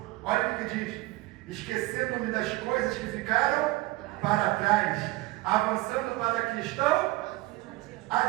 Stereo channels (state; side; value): quieter; left; 20.5 dB